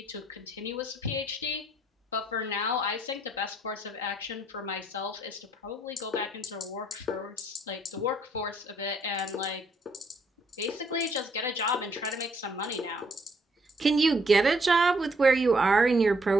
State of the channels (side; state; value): both; normal; correlation 0.68